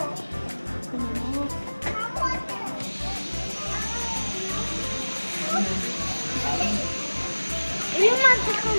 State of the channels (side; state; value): both; inverted; correlation -1.00